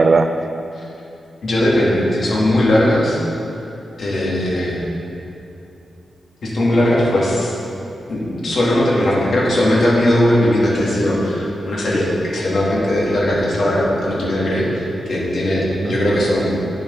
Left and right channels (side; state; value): both; normal; correlation 0.89